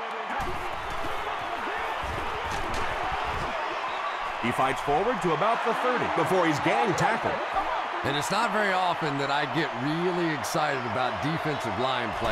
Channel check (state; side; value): identical; both; correlation 1.00